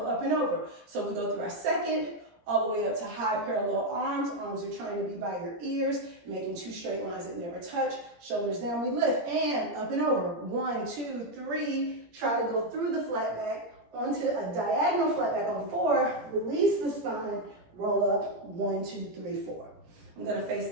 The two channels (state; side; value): late; left; 17 ms